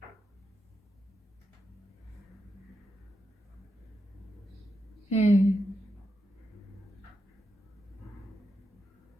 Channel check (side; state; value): both; normal; correlation 0.86